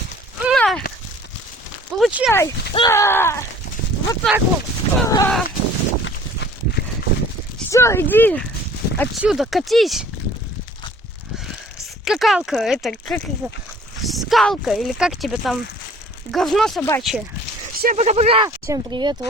На! Получай! Вот так вот! Все, иди отсюда, катись! Скакалка, это как это? Скалка, или как тебе там? Говно собачье. Всем пока-пока! Всем привет,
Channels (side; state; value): both; normal; correlation 0.51